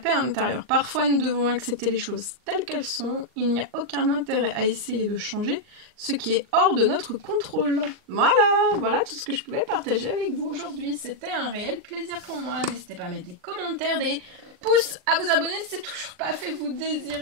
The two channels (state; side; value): late; left; 39 ms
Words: intérieure. Parfois, nous devons accepter les choses telles qu'elles sont. Il n'y a aucun intérêt à essayer de changer ce qui est hors de notre contrôle. Voilà tout ce que je pouvais partager avec vous aujourd'hui. C'était un réel plaisir pour moi. N'hésitez pas à mettre des commentaires, des pouces, à vous abonner si c'est toujours pas fait, vous